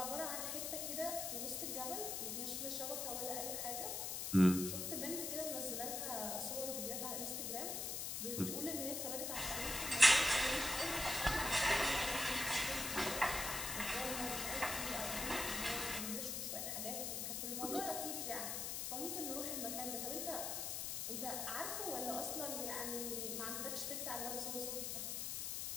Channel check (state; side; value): noise; left; hiss, 2 dB below the sound